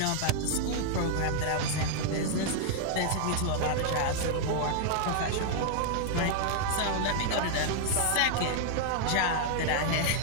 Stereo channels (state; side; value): different; both; correlation -0.01